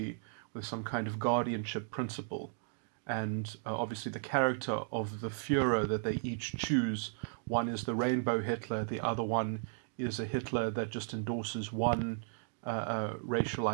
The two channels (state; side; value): silent; left; digital silence